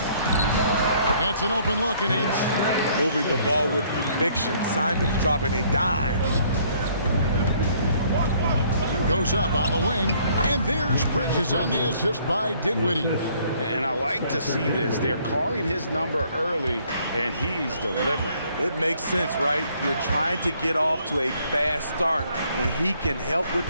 Gets an open look and hits. Moving the ball with conviction. Simons dropping a dime. Goes up on the wing, and there's Bridges on the assist by Dinwiddie. And I like to see this. They're calling his number early, and he's delivering. It makes sense, right? You're trying to get off to a fast start, and he can help with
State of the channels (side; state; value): both; inverted; correlation -0.63